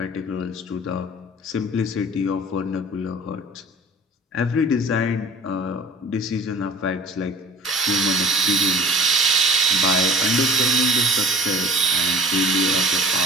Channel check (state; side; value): normal; both; correlation 0.46